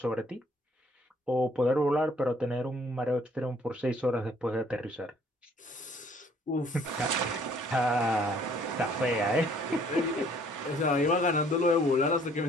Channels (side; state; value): both; normal; correlation 0.60